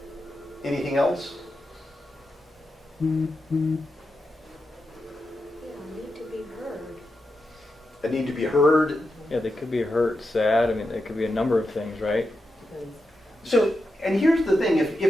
Anything else? Yeah, need to be heard. A need to be heard. Yeah, they could be hurt, sad. I mean, it could be a number of things, right? So, and here's the thing,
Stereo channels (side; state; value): both; normal; correlation 0.88